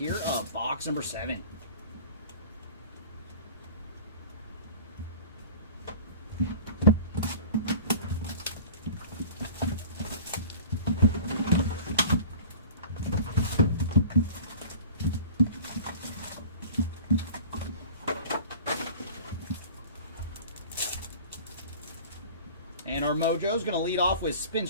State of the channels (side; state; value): both; inverted; correlation -0.41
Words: of box number 7. And our mojo's going to lead off with